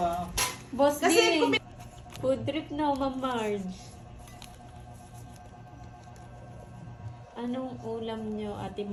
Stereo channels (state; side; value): identical; both; correlation 1.00